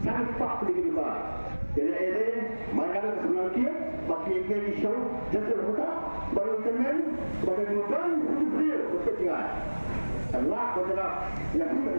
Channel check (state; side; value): inverted; both; correlation -1.00